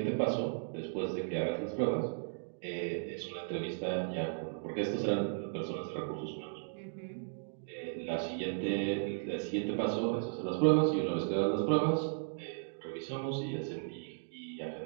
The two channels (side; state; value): left; silent; digital silence